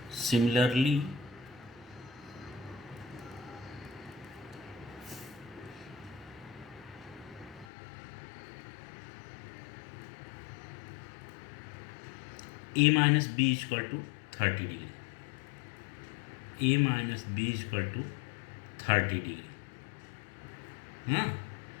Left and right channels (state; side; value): drops out; right; at 7.7 s